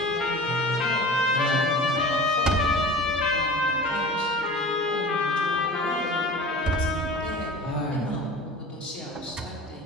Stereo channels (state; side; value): normal; both; correlation 0.38